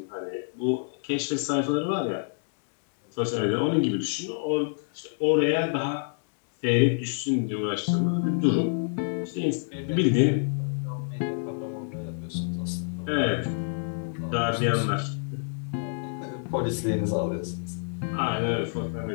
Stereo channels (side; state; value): right; silent; digital silence